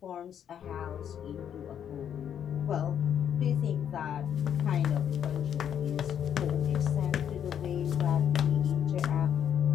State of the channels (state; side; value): quieter; right; 9.1 dB